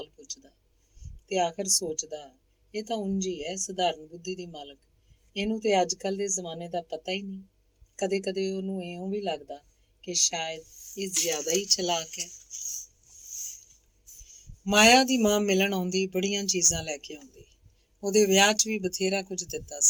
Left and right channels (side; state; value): both; identical; correlation 1.00